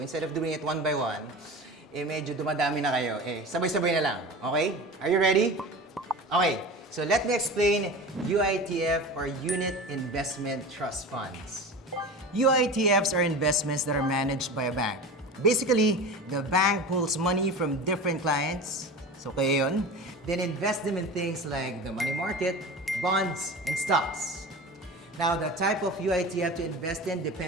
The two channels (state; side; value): normal; both; correlation 0.32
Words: instead of doing it one by one, medyo dumadami na kayo. Sabay-sabay na lang. Okay? Are you ready? Okay, so let me explain UITF or Unit Investment Trust Funds. UITFs are investments that are managed by a bank. Basically, the bank pulls money from different clients, so kayo yun, then invest them in things like the money market, bonds, and stocks. Now, the type of UITF to invest in